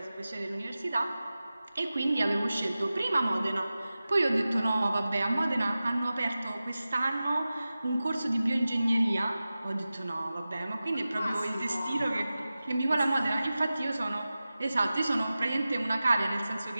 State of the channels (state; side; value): inverted; both; correlation -0.95